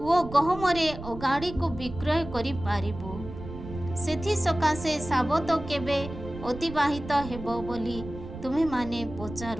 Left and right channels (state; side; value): noise; right; rumble, 11 dB below the sound